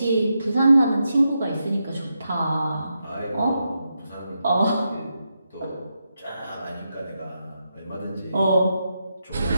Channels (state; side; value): inverted; both; correlation -0.85